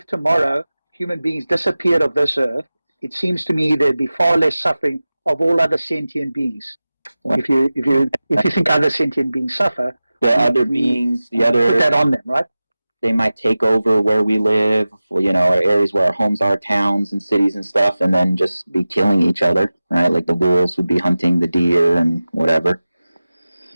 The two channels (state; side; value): inverted; both; correlation -0.97